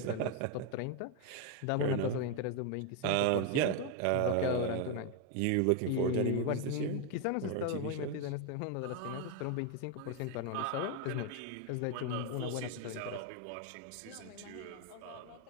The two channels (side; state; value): both; different; correlation 0.01